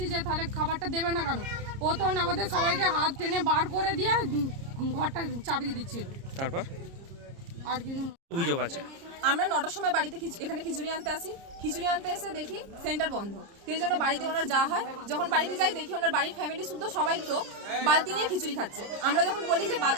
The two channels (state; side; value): late; left; 30 ms